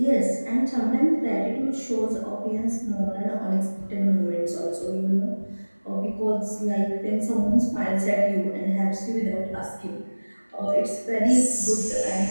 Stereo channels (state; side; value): inverted; both; correlation -1.00